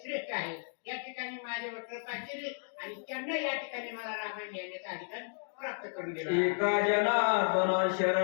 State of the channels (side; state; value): right; silent; digital silence